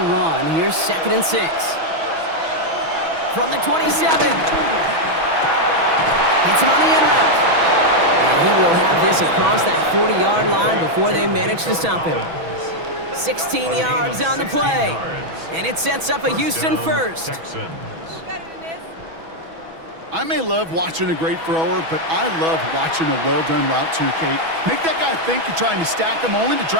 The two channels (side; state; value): left; late; 6.1 ms